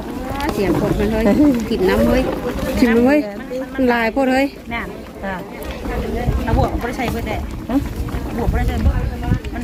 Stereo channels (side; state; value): both; identical; correlation 1.00